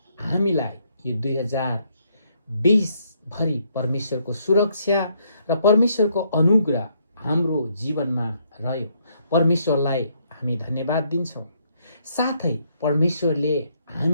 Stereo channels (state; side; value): inverted; both; correlation -0.72